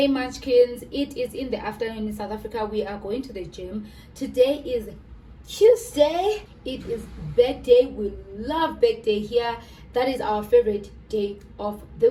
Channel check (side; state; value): both; identical; correlation 1.00